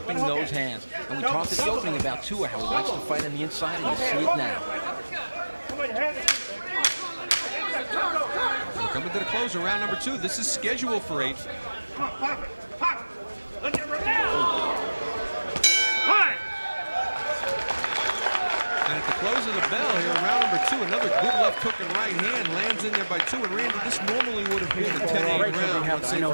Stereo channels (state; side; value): inverted; both; correlation -1.00